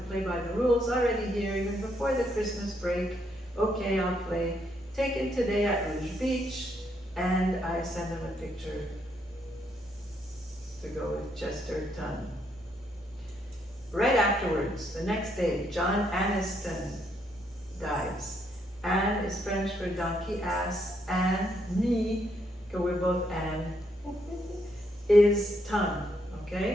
play by the rules, already here, even before the Christmas break. Okay, I'll play. Taken today at Rouge Beach, and I sent him a picture to go with Chesterton. Right afterwards, the next day, John Aniston dies. Anne is French for donkey ass. Anne, me, because we're both Anne, is ton,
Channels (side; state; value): both; normal; correlation 0.75